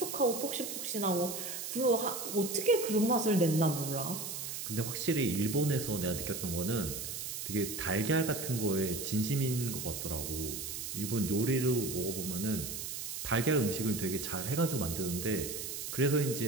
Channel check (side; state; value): right; noise; hiss, 6 dB below the sound